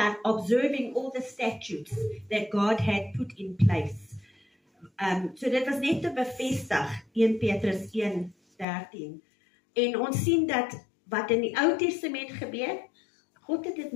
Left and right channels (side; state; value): right; drops out; at 8.7 s